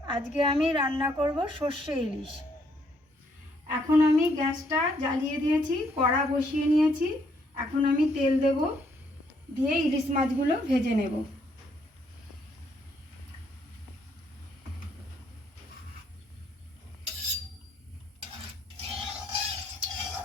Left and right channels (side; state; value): both; normal; correlation 0.70